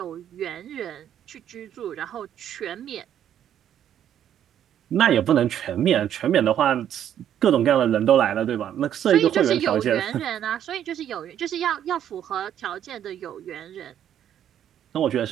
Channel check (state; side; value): quieter; left; 10.2 dB